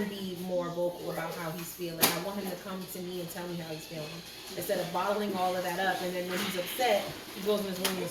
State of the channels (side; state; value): both; identical; correlation 1.00